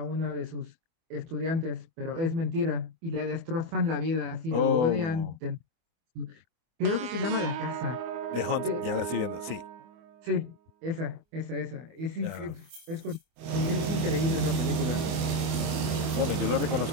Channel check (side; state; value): left; late; 24 ms